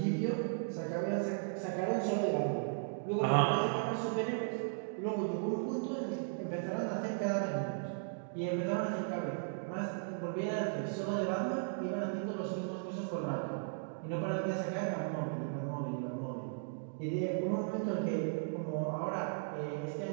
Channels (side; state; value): left; silent; digital silence